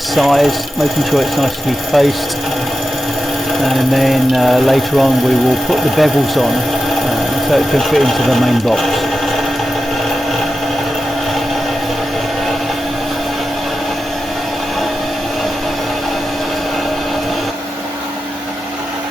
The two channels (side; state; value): both; normal; correlation 0.91